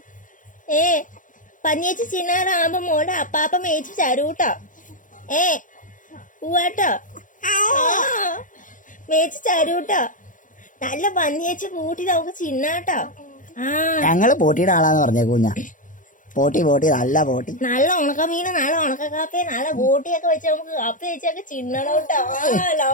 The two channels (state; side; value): late; right; 0.38 ms